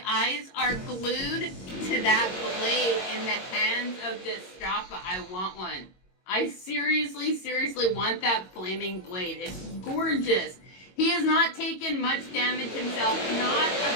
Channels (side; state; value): right; late; 22 ms